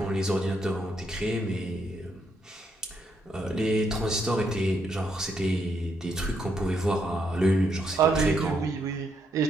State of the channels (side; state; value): both; normal; correlation 0.76